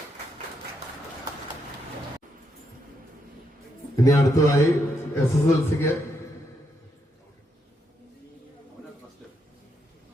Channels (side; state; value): both; normal; correlation 0.79